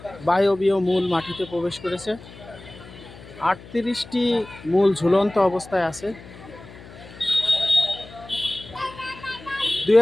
বায়বীয় মূল মাটিতে প্রবেশ করেছে। 38টি মূল ঝুলন্ত অবস্থায় আছে।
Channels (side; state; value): left; noise; hum, 18 dB below the sound